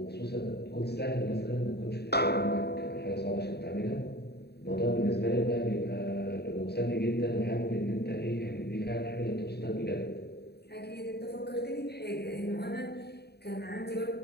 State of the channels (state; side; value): late; right; 0.48 ms